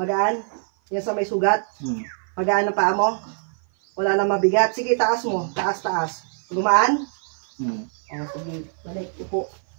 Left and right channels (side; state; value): left; silent; 56 dB below the other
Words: Yan sa may sugat? Magaan ang paa mo? Wala na mabigat? Sige, taas mo. Taas. Gumaan? Oh, sige. Balik. Upo.